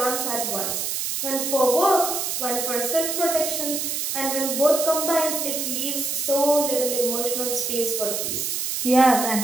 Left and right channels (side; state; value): right; noise; hiss, 2 dB below the sound